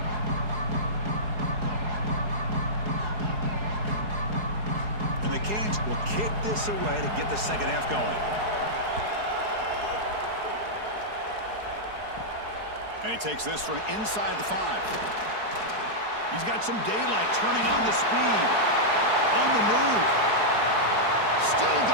Away to get the second half going. And he takes this from inside the 5. He's got some daylight turning on the speed. On the move. Still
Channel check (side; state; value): left; late; 4.7 ms